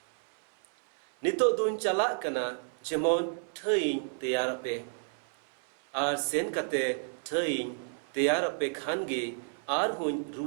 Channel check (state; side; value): silent; left; 57 dB below the other